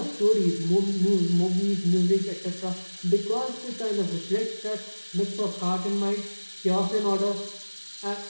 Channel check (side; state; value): both; inverted; correlation -1.00